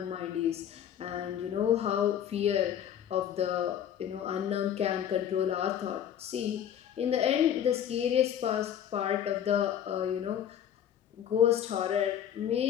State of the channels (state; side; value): quieter; right; 9.8 dB